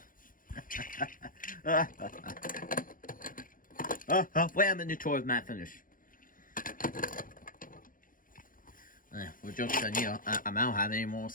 Wait a minute tour of Matt finish. Well, joke's on you. I don't have any moral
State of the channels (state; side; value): late; right; 0.40 ms